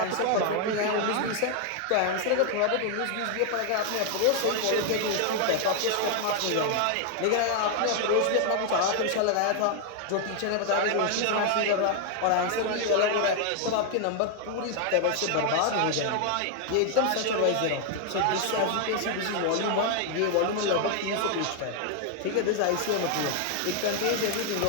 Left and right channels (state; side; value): different; both; correlation 0.00